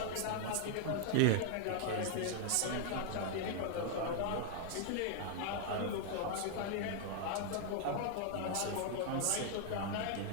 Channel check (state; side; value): different; both; correlation 0.00